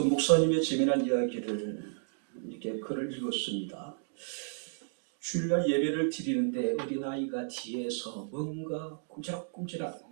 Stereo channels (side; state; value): left; silent; digital silence